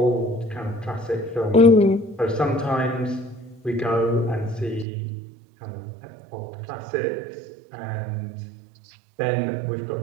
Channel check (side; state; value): left; drops out; at 4.9 s